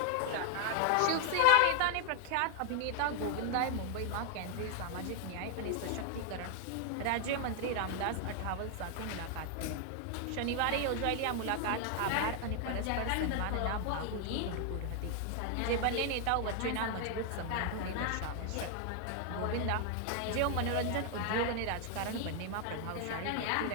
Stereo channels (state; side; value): different; both; correlation 0.00